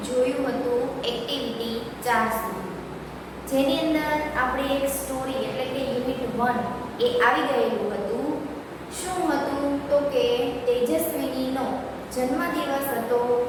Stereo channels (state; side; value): identical; both; correlation 1.00